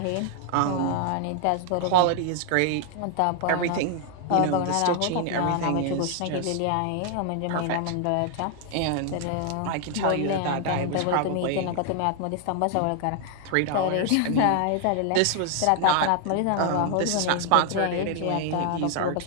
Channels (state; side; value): different; both; correlation 0.00